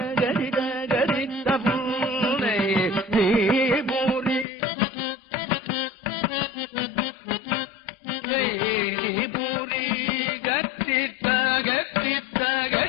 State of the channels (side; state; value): right; drops out; at 4.5 s